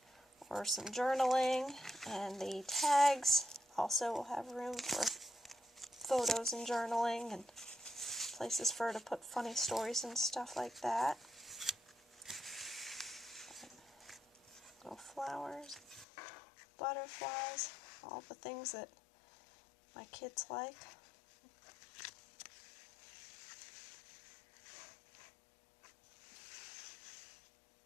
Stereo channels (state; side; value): drops out; right; at 16.1 s